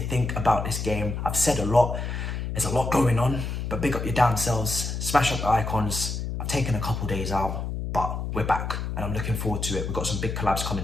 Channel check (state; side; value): noise; left; hum, 4 dB below the sound